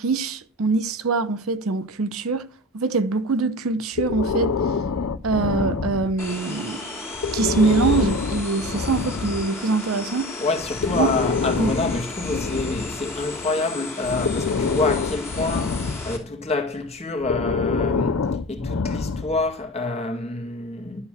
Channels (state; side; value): normal; both; correlation 0.33